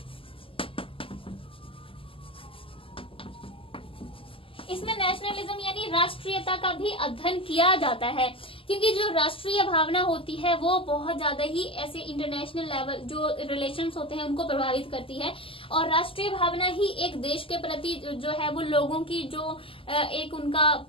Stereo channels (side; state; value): right; late; 0.26 ms